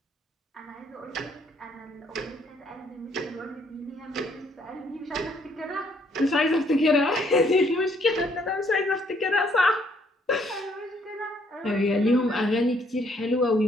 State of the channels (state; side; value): normal; both; correlation 0.67